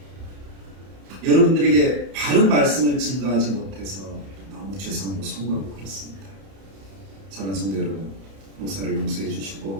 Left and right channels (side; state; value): left; late; 31 ms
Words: 여러분들에게 바른 말씀을 증거하지 못해서 너무 죄송하고 송구하고 그렇습니다. 사랑하는 성도 여러분, 목사를 용서해